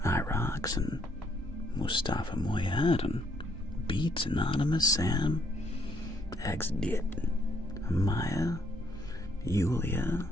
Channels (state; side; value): normal; both; correlation 0.69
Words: Irox and Mustafa Moyad and Beats Anonymous, Sam, XDit, Maya, Yulia